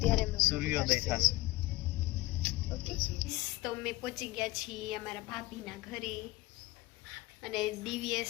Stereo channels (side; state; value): right; quieter; 19.8 dB